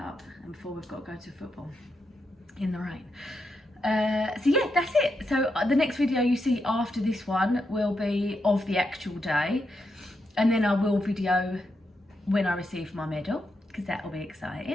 and before we've got to go to football in the rain. So yeah, that's it. So the next video you see after this one will be of the actual day, and then I will video when I receive my medal, because that will be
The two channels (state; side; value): normal; both; correlation 0.83